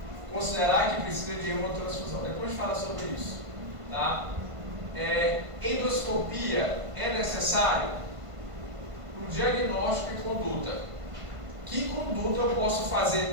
considerar que precisa de hemotransfusão. Depois fala sobre isso. Tá? Endoscopia é necessário no diagnóstico e conduta. Que conduta eu posso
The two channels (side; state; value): left; late; 1.5 ms